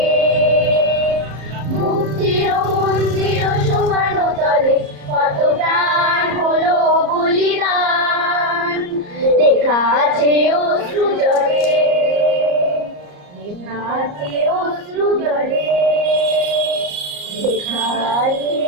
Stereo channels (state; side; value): late; left; 34 ms